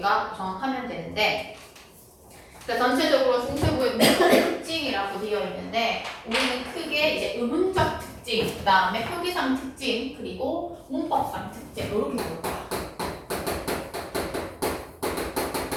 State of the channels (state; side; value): identical; both; correlation 1.00